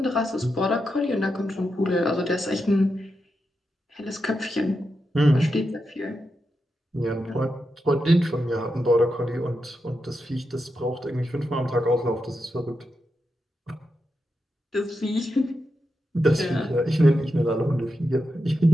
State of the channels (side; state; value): both; normal; correlation 0.87